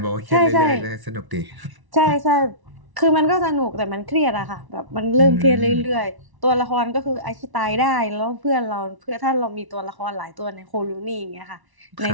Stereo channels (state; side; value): late; left; 1.1 ms